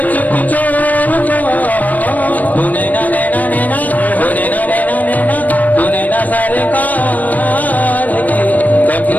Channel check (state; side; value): late; right; 0.078 ms